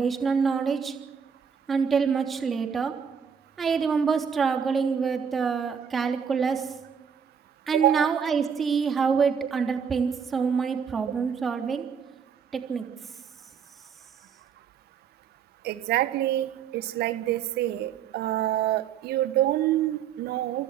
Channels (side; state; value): left; quieter; 7.2 dB